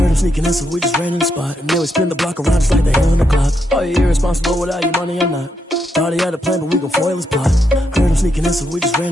him sneaking in, so we just ran in the spot. And then we spin the block around just like the hands on the clock. Are you irresponsible without your money or not? Thought he had a plan, but we gon' foil his plot. Heard him sneaking in, so we just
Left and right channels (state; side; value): normal; both; correlation 0.80